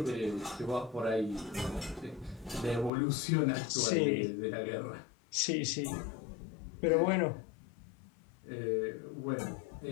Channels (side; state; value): right; drops out; at 2.9 s